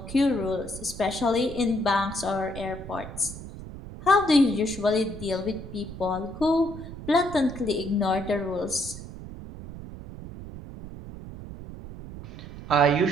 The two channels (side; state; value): right; noise; rumble, 12 dB below the sound